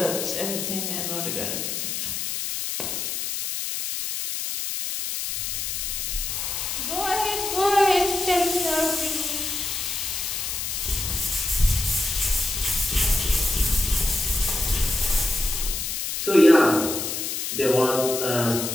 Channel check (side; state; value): left; noise; hiss, 3 dB below the sound